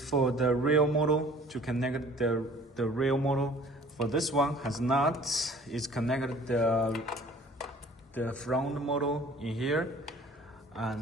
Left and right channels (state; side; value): normal; both; correlation 0.51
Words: the real model to connect the real model. For this one has not, it's connected the front model in here.